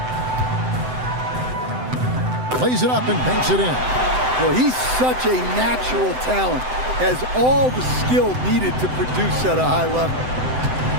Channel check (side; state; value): left; late; 7.9 ms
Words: Plays it up and banks it in. Well, he's such a natural talent. Has all the skill needed to produce at a high level.